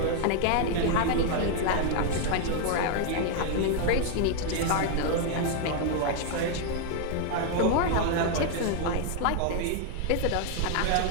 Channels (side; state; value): both; different; correlation 0.00